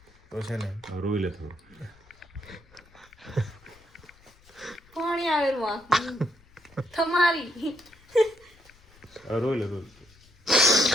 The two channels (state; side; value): noise; left; rumble, 28 dB below the sound